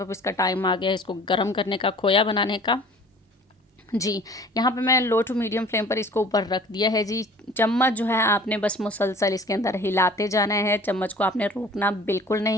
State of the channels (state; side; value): normal; both; correlation 0.47